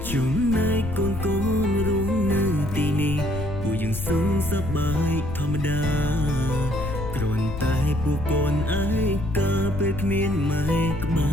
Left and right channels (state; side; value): noise; left; rumble, 7 dB below the sound